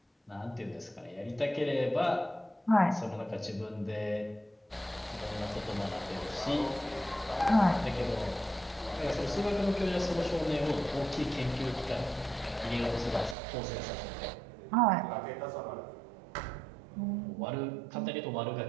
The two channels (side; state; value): left; drops out; at 13.4 s